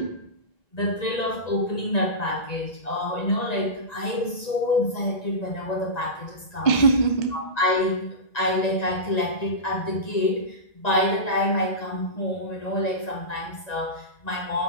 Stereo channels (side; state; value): right; late; 1.9 ms